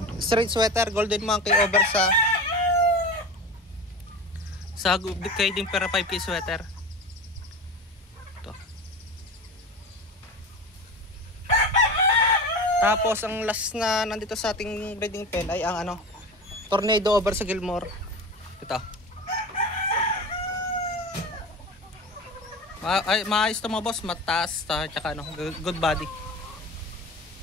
straight sweater Golden Monkey over sa kay din para 5K sweater. Ito. Tapos ang last na nandito sa ating breeding pen ay ang Tornado over sa Gilmore. Ito. Maayos to mga boss, mataas tsaka good body.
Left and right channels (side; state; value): both; normal; correlation 0.30